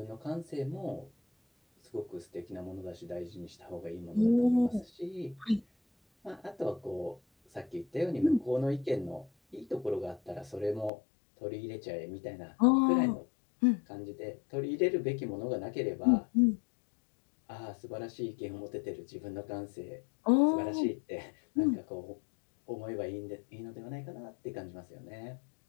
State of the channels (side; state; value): right; drops out; at 10.9 s